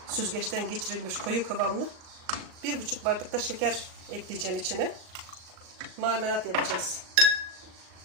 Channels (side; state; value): left; late; 39 ms